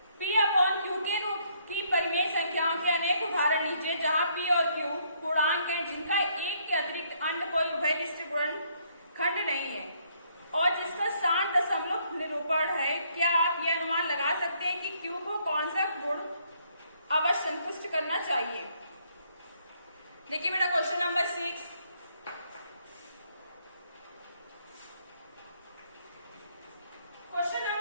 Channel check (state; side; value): inverted; both; correlation -0.69